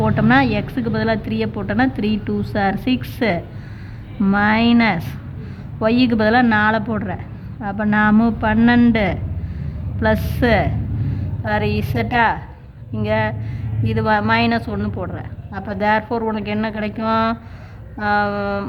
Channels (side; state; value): both; identical; correlation 1.00